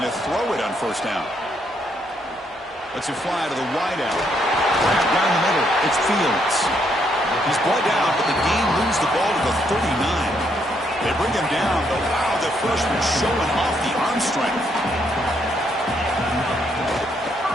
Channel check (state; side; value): normal; both; correlation 0.74